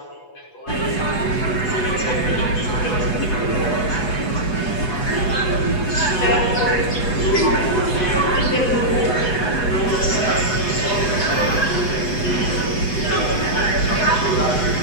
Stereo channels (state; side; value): late; right; 8.0 ms